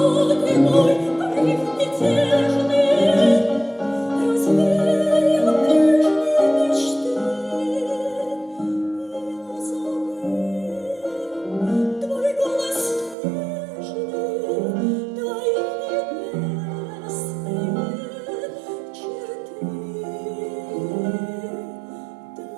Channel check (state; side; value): drops out; left; at 13.2 s